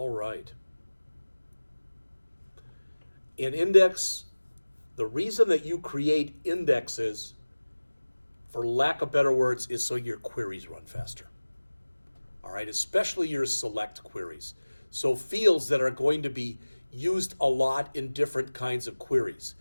right. In index, the reason that you create indexes, for lack of better words, is so your queries run faster. All right, especially your select queries. So fields that are going to be used a lot in different kinds of queries.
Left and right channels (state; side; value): inverted; both; correlation -1.00